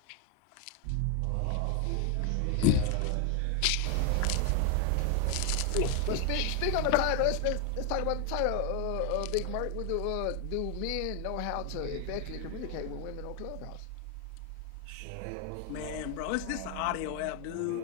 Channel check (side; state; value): both; different; correlation 0.00